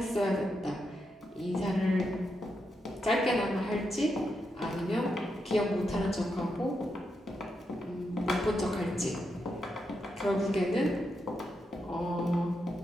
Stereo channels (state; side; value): normal; both; correlation 0.84